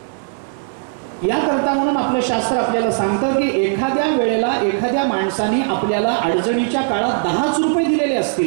याकरता म्हणून आपलं शास्त्र आपल्याला सांगतं की एखाद्या वेळेला एखाद्या माणसाने आपल्याला अडचणीच्या काळात 10 रुपये दिलेले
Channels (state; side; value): silent; left; 65 dB below the other